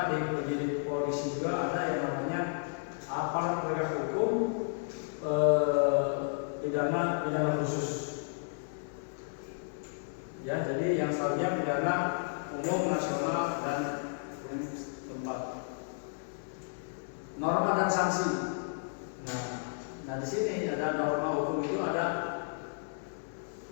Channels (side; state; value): right; silent; digital silence